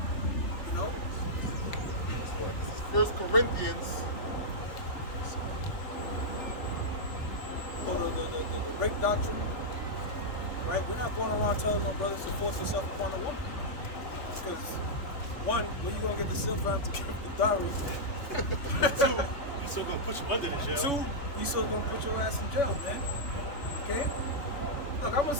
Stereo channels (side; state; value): right; late; 3.5 ms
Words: You know? First Corinthians. Or the rape doctrine. Right? We're not going around telling no brothers to force yourself upon a woman. Because, one, where you going to get the silver to give the dowry? Two, he's still gonna put you under the jail. Two, he's still gonna put your ass in jail, man. Okay? Look, I'm